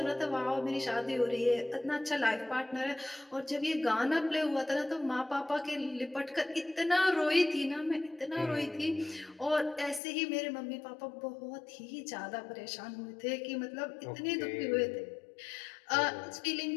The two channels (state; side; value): drops out; right; at 10.0 s